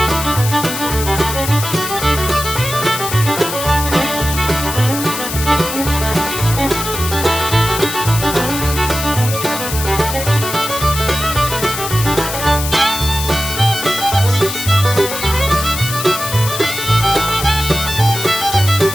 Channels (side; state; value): left; noise; hiss, 6 dB below the sound